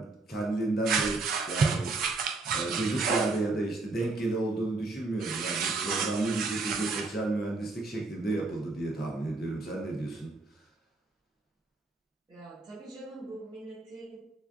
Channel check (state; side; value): quieter; left; 3.3 dB